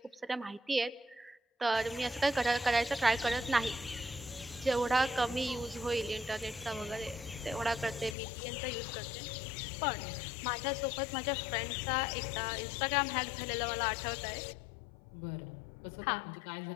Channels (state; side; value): drops out; right; at 8.2 s